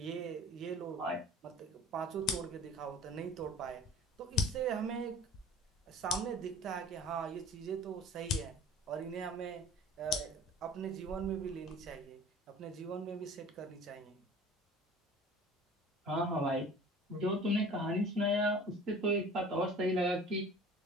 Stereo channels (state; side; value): normal; both; correlation 0.45